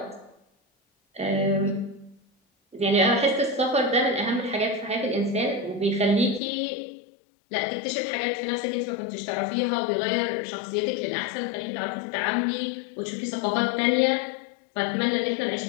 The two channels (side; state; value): right; drops out; at 6.4 s